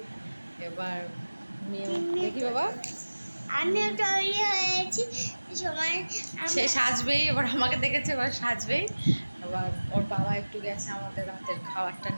এবার দেখি বাবা আমিও তৈরি হয়েছি, সময় সে সাজবেই, এবার আমাকে দেখেছে এবার সাজবেই। এবার ওর বাবা একটু গেছে আমাদের রাতের খাবারটা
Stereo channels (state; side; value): inverted; both; correlation -1.00